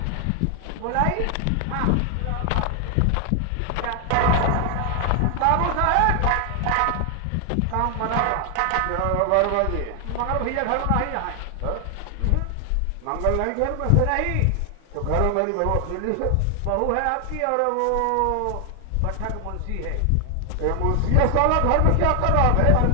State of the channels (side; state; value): both; different; correlation 0.00